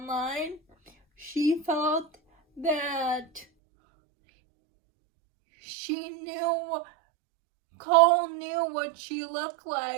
She felt that Cole knew what she looked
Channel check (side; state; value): left; drops out; at 3.5 s